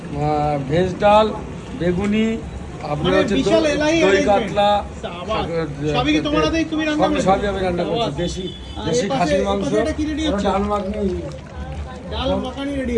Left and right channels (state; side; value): identical; both; correlation 1.00